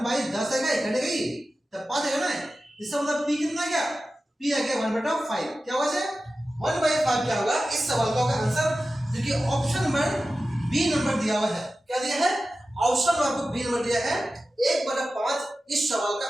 आएगा, कटेगा ही तब 5 आएगा ना, इसका मतलब p कितना गया, p आ गया 1/5। क्या होगा से 1/5 क्या होगा, इस सवाल का होगा आंसर, जो कि ऑप्शन नंबर बी नंबर दिया हुआ है। क्या दिया है, ऑप्शन नंबर बी नंबर दिया है, 1/5 इस सवाल का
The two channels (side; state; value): both; normal; correlation 0.94